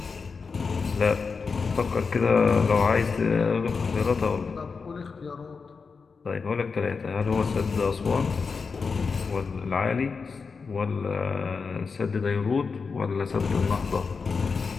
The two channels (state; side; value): quieter; right; 5.0 dB